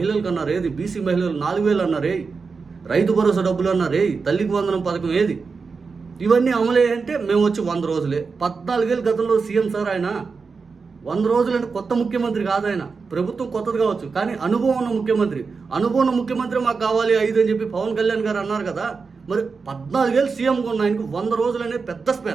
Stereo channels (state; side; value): quieter; left; 4.9 dB